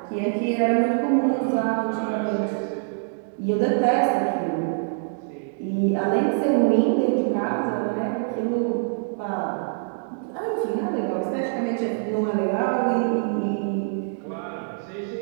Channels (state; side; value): silent; left; digital silence